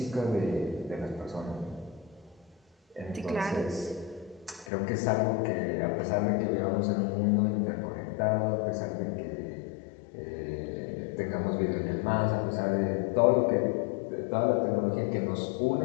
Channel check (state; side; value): drops out; right; at 4.7 s